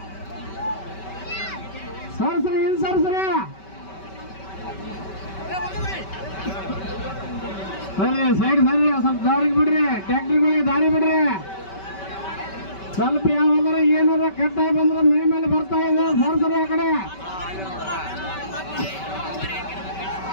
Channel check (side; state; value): right; late; 5.2 ms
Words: ಸರ್ಸ್ರಿ ಹಿಂದ್ ಸರ್ಸ್ರಿ. ಸರಿ ಸೈಡ್ ಸರಿ ಸ್ವಲ್ಪ ದಾರಿಗೆ ಬಿಡ್ರಿ, ಟ್ಯಾಕ್ಟ್ರಿಗಳಿಗೆ ದಾರಿ ಬಿಡ್ರಿ. ಸ್ವಲ್ಪ ಯಾವಾಗಾರ ಏನಾರ ಕಟ್ಟಾಗಿ ಬಂದ್ರೆ ಮೇಲೆ ಬರ್ತಾ ಇದೆ ಸರ್ಸರಿ ಆ ಕಡೆ.